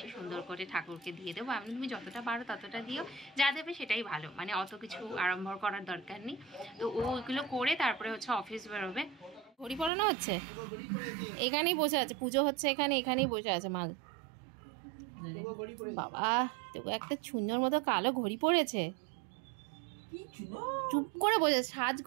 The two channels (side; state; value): left; drops out; at 9.9 s